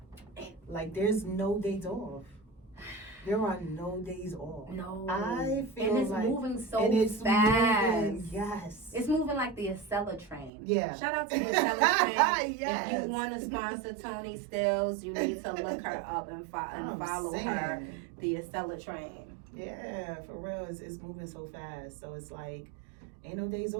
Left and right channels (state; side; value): drops out; left; at 10.5 s